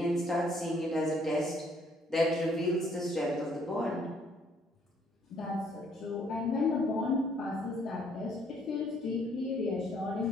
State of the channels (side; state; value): both; normal; correlation 0.65